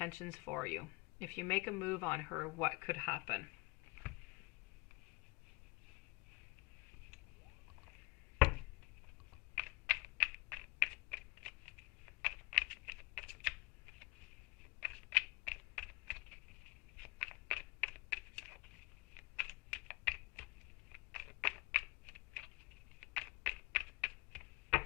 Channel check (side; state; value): right; quieter; 25.5 dB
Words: for you. If you make a move on her, what could happen?